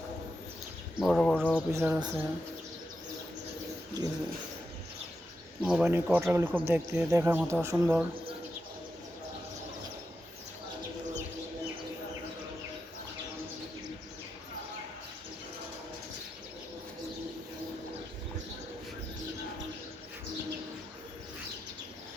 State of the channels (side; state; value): both; normal; correlation 0.87